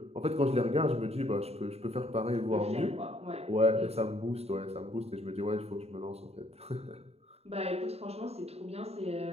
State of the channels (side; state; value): left; late; 0.30 ms